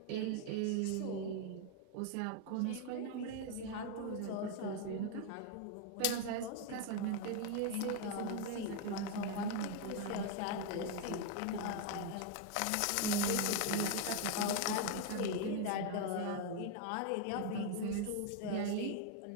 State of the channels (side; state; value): both; different; correlation 0.01